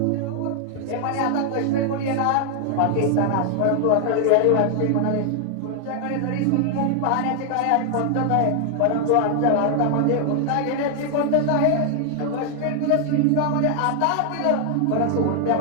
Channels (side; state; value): both; different; correlation 0.00